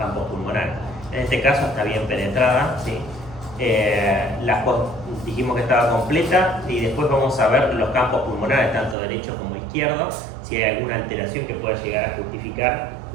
pulmonares. En este caso está bien penetrada, ¿sí? Dijimos que estaba completa y después vamos a ver los campos pulmonares, tanto derecho como izquierdo, si hay alguna alteración que pueda llegar a justificar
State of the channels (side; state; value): left; drops out; at 9.0 s